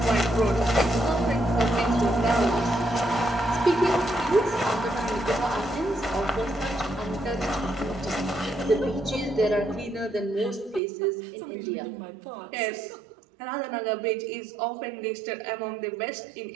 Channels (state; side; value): drops out; left; at 10.8 s